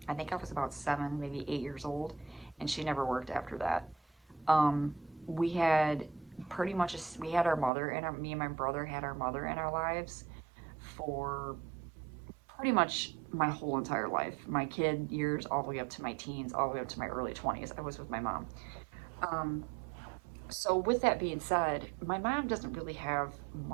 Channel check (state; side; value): drops out; left; at 7.7 s